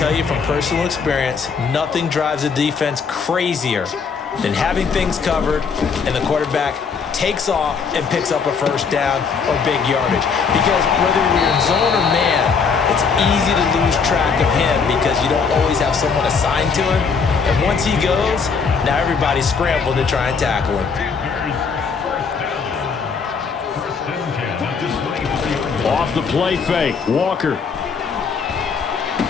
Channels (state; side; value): quieter; right; 5.6 dB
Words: you from personal experience, nothing drives a defense crazier than having things covered and the quarterback takes off and picks up a first down or big yardage. Because whether you're in zone or man, it's easy to lose track of him because you don't always have someone assigned to him. And once he goes, now everybody's scrambling to try and tackle him. Off the play fake, Walker.